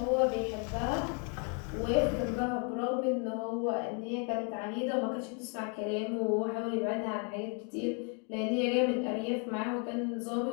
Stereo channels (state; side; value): quieter; right; 38.1 dB